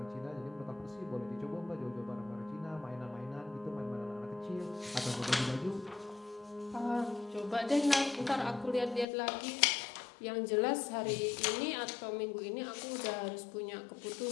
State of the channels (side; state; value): right; drops out; at 9.1 s